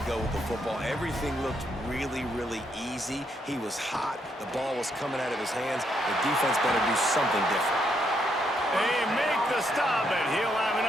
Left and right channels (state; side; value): normal; both; correlation 0.76